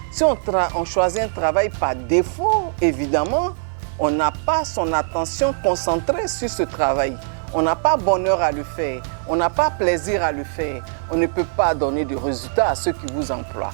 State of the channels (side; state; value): left; silent; 65 dB below the other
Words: Si on choisit un travail par défaut, évidemment, on n'a pas son attention concentrée sur ce travail. On n'a pas bonheur à le faire. On n'a pas plaisir à le faire. On ne peut pas donner de résultats à ceux qui vous emploient.